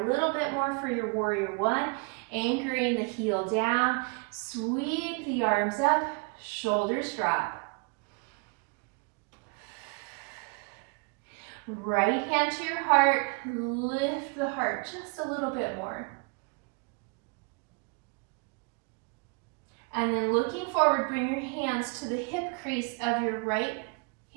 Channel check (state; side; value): quieter; left; 32.6 dB